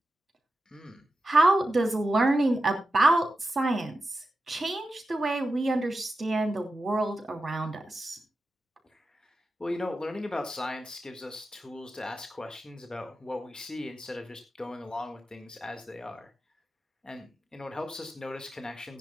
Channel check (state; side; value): normal; both; correlation 0.91